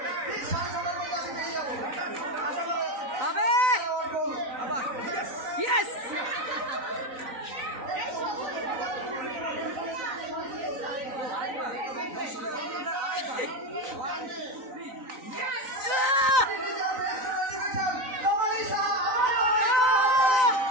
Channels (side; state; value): left; late; 3.9 ms